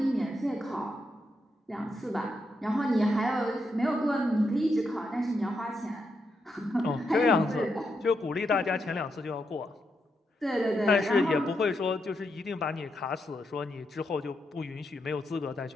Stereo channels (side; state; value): both; normal; correlation 0.82